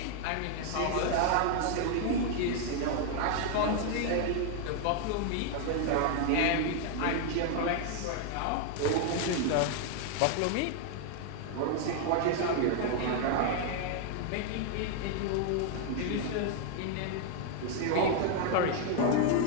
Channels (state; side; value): different; both; correlation 0.00